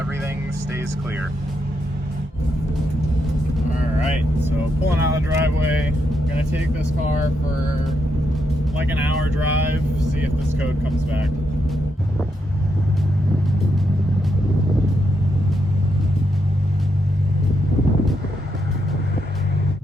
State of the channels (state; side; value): normal; both; correlation 0.80